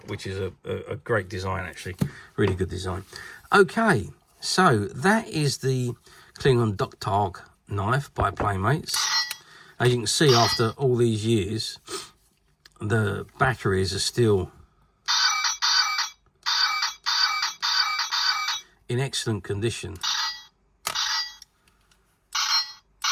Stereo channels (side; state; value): both; identical; correlation 1.00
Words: which is a great design, actually, really good design. Okay, so that is the Klingon Tahg knife by Playmates. As you can see, after all these years, the batteries are still in excellent condition.